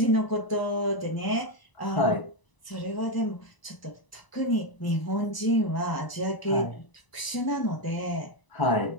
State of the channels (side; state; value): right; late; 1.0 ms